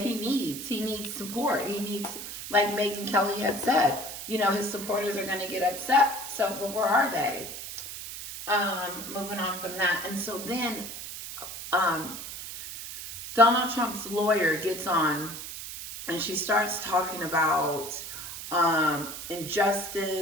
he needs. He needs support. He needs, like Megan Kelly had said, his supporters are going to get upset. So, but where are they? Moving on from that. And so then Donald Trump's lawyer gets on and she starts talking about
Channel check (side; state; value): right; noise; hiss, 9 dB below the sound